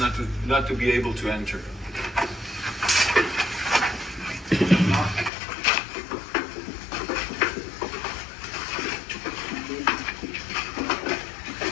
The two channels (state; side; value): drops out; right; at 5.3 s